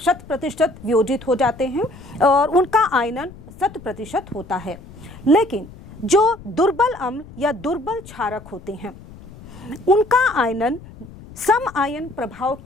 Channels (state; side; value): noise; left; rumble, 18 dB below the sound